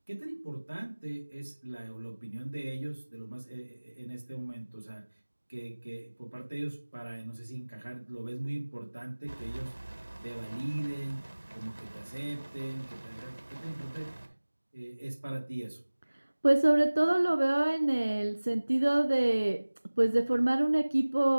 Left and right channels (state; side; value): inverted; both; correlation -1.00